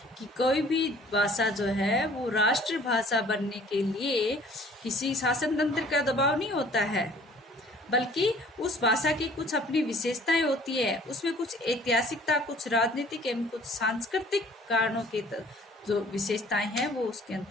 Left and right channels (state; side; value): normal; both; correlation 0.53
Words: कि कोई भी भाषा जो है वो राष्ट्रभाषा बनने के लिए किसी शासन तंत्र का दबाव नहीं होता है, बल्कि उस भाषा की कुछ अपनी विशेषताएं होती है। उसमें कुछ ऐतिहासिकता, कुछ राजनीतिक एवं कुछ सांस्कृतिक कारणों के जो विशेषताएं हैं वो उसके